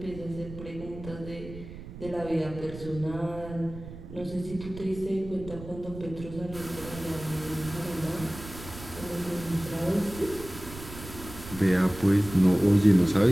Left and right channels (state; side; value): noise; right; rumble, 13 dB below the sound